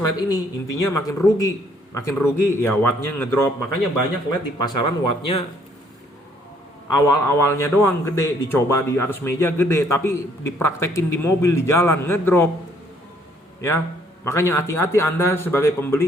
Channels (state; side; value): normal; both; correlation 0.65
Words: ini, intinya makin rugi. Makin rugi ya wattnya ngedrop. Makanya banyak LED di pasaran wattnya awal-awalnya doang gede, dicoba di atas meja gede, tapi dipraktekin di mobil di jalan ngedrop. Ya, makanya hati-hati Anda sebagai